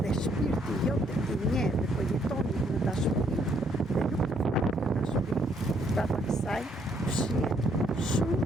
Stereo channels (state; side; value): normal; both; correlation 0.69